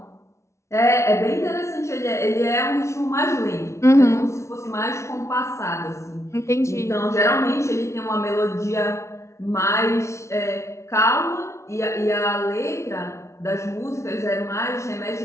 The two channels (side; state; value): right; late; 0.13 ms